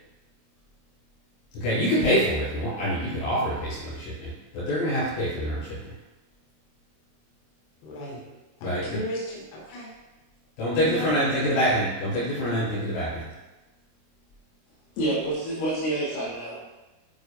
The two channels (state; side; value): late; right; 26 ms